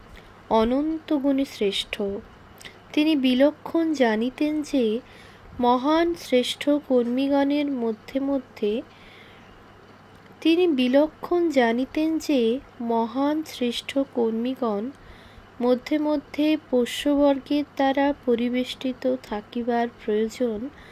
অনন্ত গুণে শ্রেষ্ঠ। তিনি বিলক্ষণ জানিতেন যে মহান শ্রেষ্ঠ কর্মীগণের মধ্যে মধ্যে পোষ্যবর্গের দ্বারা পরিবেষ্টিত থাকিবার প্রয়োজন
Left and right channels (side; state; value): both; identical; correlation 1.00